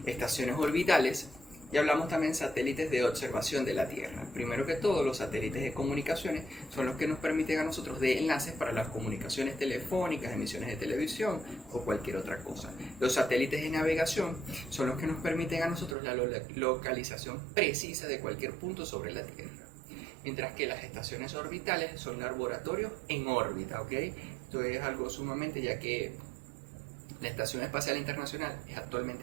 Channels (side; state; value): left; drops out; at 16.0 s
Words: estaciones orbitales, y hablamos también satélites de observación de la Tierra. Primero que todo, los satélites de comunicaciones son los que nos permiten a nosotros de enlaces para las comunicaciones telefónicas, emisiones de televisión o cualquier otra cosa. Los satélites de navegación son los que nos permiten a nosotros la localización precisa de cualquier punto sobre la Tierra. Mientras que las estaciones orbitales son laboratorios en órbita, ¿ok? Esto es algo sumamente, ya que la Estación Espacial Internacional es